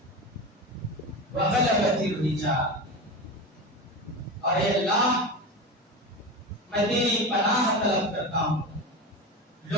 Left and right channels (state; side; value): normal; both; correlation 0.24